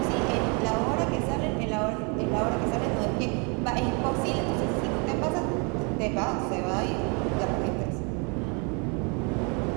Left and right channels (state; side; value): quieter; left; 33.3 dB